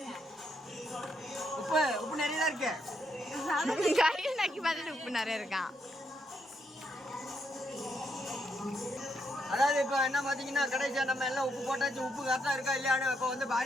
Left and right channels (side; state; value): both; normal; correlation 0.77